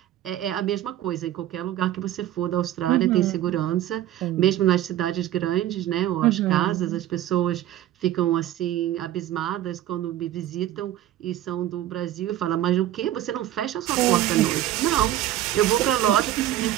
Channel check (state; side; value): quieter; left; 12.9 dB